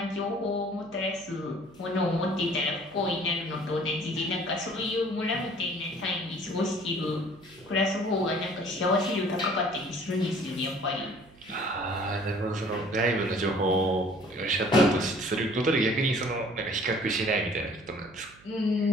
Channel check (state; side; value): noise; right; hum, 25 dB below the sound